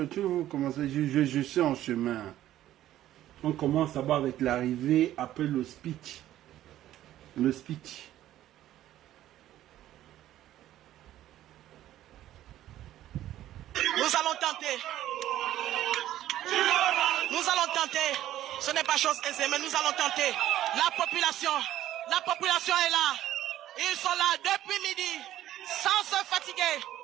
tout commencer, je suis en chemin. On commence d'abord avec l'arrivée, après le speech. Le speech. Nous allons tenter. Ce n'est pas chose aisée, mais nous allons tenter. La population est là. Ils sont là depuis midi, sans se fatiguer.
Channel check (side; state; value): left; quieter; 13.2 dB